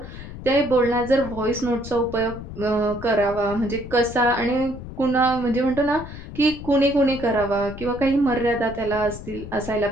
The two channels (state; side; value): noise; left; rumble, 12 dB below the sound